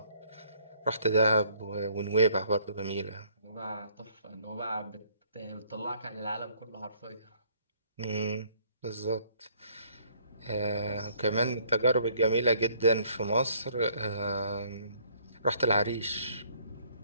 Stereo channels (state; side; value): inverted; both; correlation -0.63